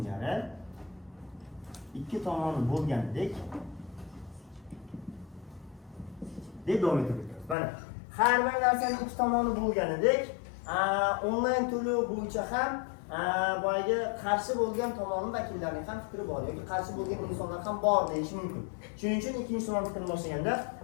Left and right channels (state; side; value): drops out; right; at 7.6 s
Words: ikki tomoni bo'lgandek deb davom ettiramiz. Mana har bir narsaning ikki tomoni bo'lganidek, onlayn to'lov bo'yicha ham boyagi qarshi bo'lgan tomonning vakillarining ham fikri bor yoki qarshi bo'lgan insonlar ham bor deyish mumkin. Shuning uchun ikkinchi tomon fikrni boshlaganda,